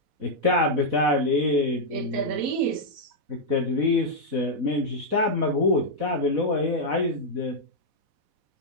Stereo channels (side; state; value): left; late; 4.1 ms